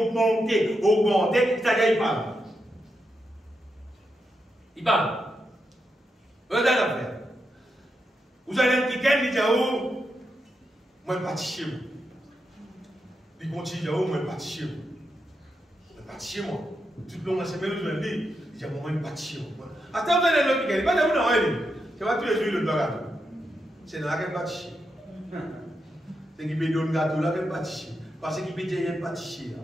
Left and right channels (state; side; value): normal; both; correlation 0.85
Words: c'est-à-dire il parle. Il parle. Regardez l'affaire. Vous allez un week-end, il dit, oh, moi, je ne vais pas chez vous. Il continue, oh, moi, je ne vais pas chez vous. Je ne vais pas chez moi. Tout le long de la semaine, je vais dire, il dit, moi, je ne vais pas chez vous. Attends, vous allez le week-end, il va dire, non, c'est pas tous les jours le gâteau. C'est dans la qu'elle va chez. C'est qui peut donner gâteau là, qu'elle va chez. Parce qu'il peut dire, il va chez.